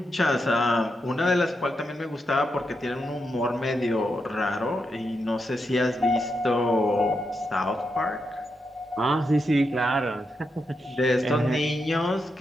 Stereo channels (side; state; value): both; normal; correlation 0.84